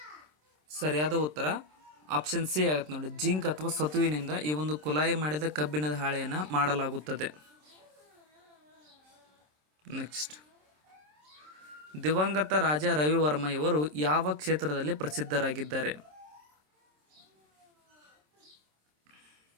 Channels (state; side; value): late; left; 27 ms